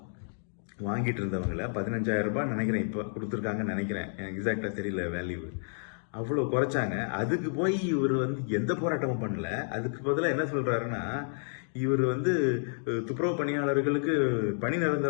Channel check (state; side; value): silent; right; 58 dB below the other